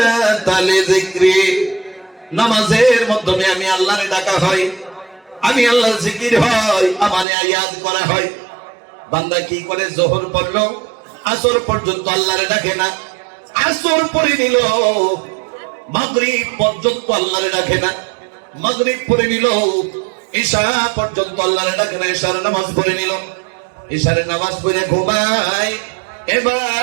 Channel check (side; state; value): left; drops out; at 7.2 s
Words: লিযিকরি, নামাজের মাধ্যমে আমি আল্লাহরে ডাকা হয়, আমি আল্লাহর জিকির হয়, আমারে ইয়াদ করা হয়। বান্দা কি করে? যোহর পড়লো, আসর পর্যন্ত আল্লাহরে ডাকে না, আসর পড়ে নিল, মাগরিব পর্যন্ত আল্লাহরে ডাকে না, মাগরিব পড়ে নিল, ইশা পর্যন্ত আল্লাহরে ডাকে না, ইশার নামাজ পড়ে নিল, ইশারের নামাজ পড়ে ঘুমায়।